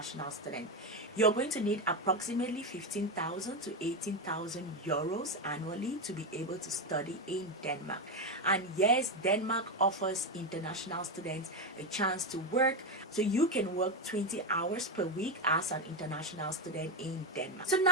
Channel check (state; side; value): normal; both; correlation 0.09